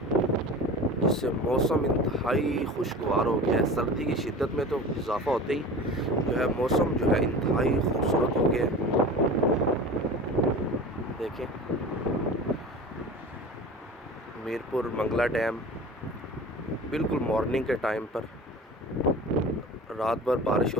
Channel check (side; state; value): both; normal; correlation 0.36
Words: जिससे मौसम इंतहाई खुशगवार हो गया है। सर्दी की शिद्दत में तो इजाफ़ा होते ही जो है मौसम जो है इंतहाई खूबसूरत हो गया है। देखें, मीरपुर मंगला डैम बिल्कुल मॉर्निंग के टाइम पर रात भर बारिश